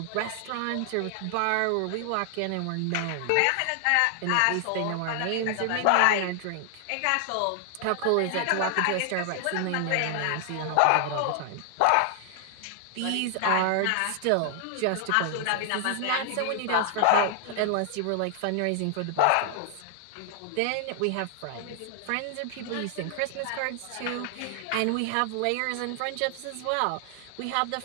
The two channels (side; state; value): both; different; correlation 0.00